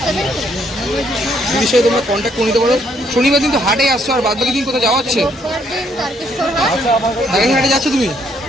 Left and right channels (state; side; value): normal; both; correlation 0.70